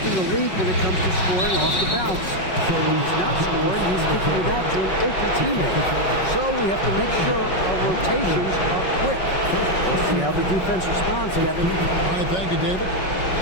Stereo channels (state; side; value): late; right; 5.4 ms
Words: in the league when it comes to scoring off the bounce. When he's not scoring, he's kicking it out to an open teammate. So we have to make sure our rotations are quick. We'll see how the defense responds, Kevin. All right, thank you, David.